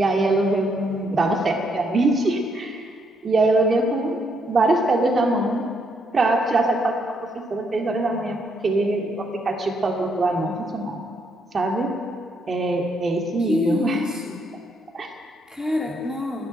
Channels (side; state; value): both; normal; correlation 0.74